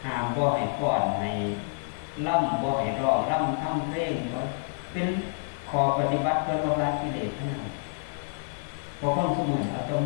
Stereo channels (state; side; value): silent; right; 59 dB below the other